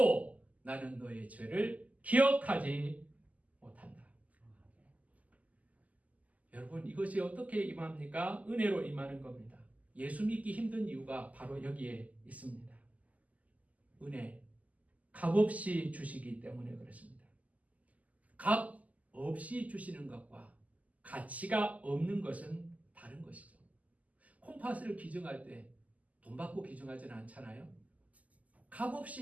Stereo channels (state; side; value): late; left; 0.074 ms